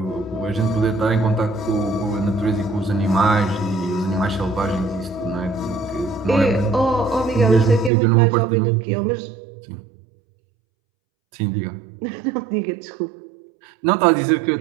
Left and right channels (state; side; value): drops out; left; at 7.9 s